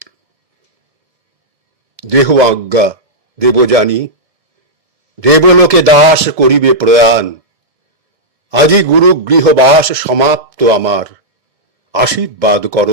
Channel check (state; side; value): late; left; 2.2 ms